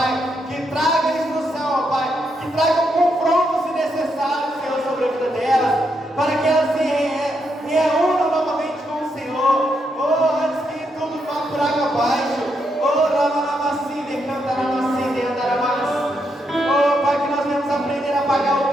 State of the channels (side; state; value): both; normal; correlation 0.80